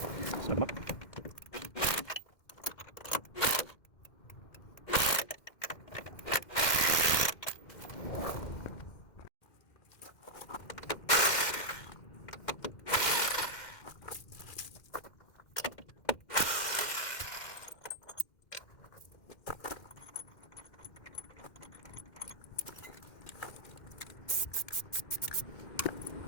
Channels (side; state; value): right; late; 2.1 ms